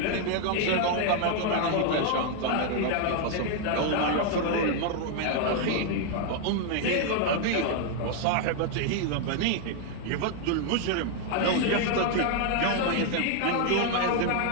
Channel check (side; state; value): both; different; correlation 0.00